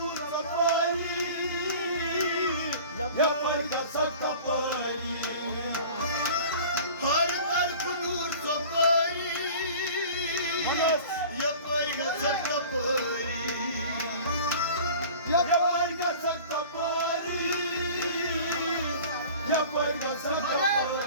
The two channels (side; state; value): both; inverted; correlation -0.42